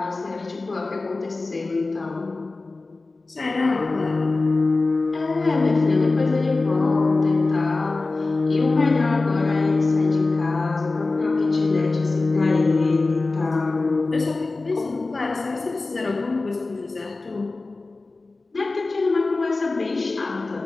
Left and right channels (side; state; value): right; quieter; 3.5 dB